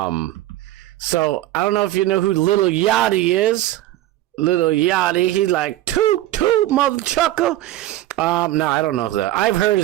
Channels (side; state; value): left; quieter; 14.9 dB